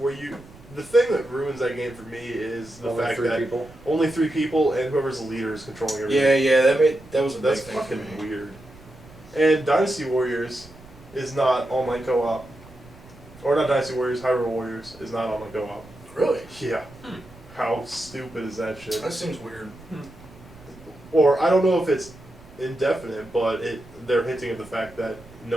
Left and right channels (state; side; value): noise; right; rumble, 21 dB below the sound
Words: you, the thing that ruins that game for me is the Only fact 3 that people. only 3 people and whoever's the leader is controlling everything. that was a That's big thing for fucking me. weird. And Dynasty Warriors is not online co-op. Or not Dynasty Warriors, Hyrule Warriors is not online co-op. Really? Yeah. How stupid is that shit? That seems weird. Or I don't know if it's indefinite, but they're hinting at the fact that